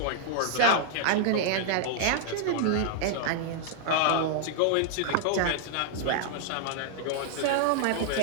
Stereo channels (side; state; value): both; different; correlation -0.01